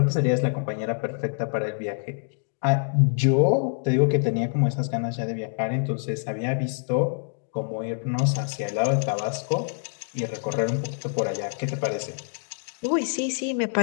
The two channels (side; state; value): right; silent; digital silence